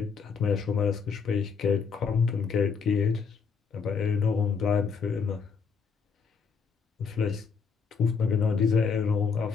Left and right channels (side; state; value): right; quieter; 5.8 dB